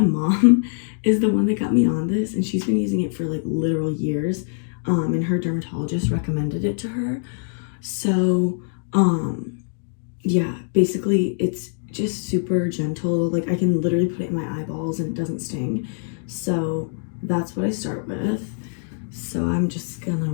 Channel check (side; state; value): right; silent; 63 dB below the other